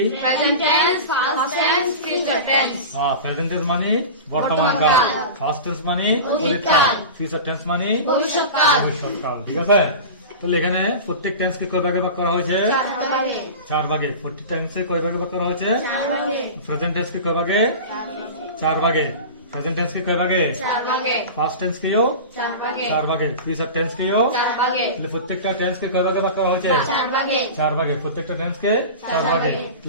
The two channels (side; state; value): both; inverted; correlation -0.30